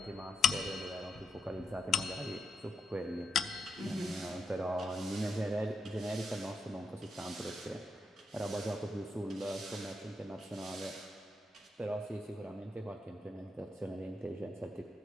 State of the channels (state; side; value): normal; both; correlation 0.82